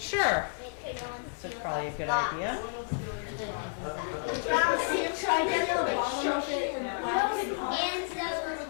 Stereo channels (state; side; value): silent; right; 57 dB below the other